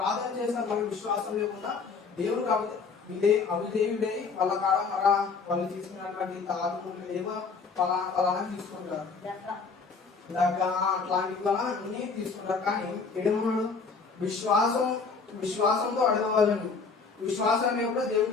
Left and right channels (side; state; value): right; quieter; 4.9 dB